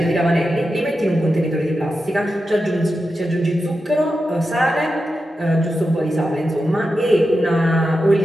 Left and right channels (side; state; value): both; normal; correlation 0.90